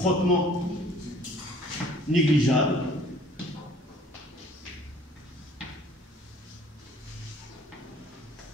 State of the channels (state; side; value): normal; both; correlation 0.54